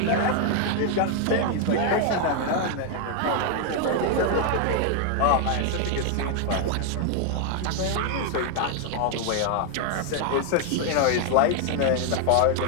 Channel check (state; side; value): different; both; correlation 0.00